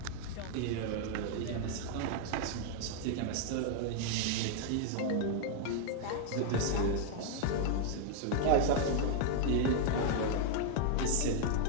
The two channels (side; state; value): both; different; correlation 0.00